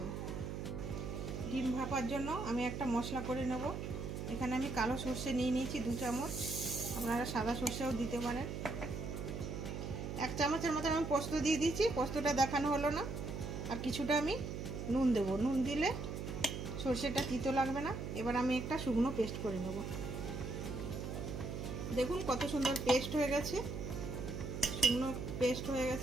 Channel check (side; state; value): right; noise; hum, 5 dB below the sound